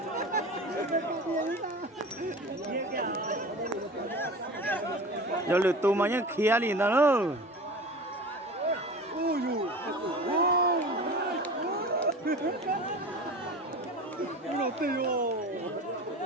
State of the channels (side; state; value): both; normal; correlation 0.35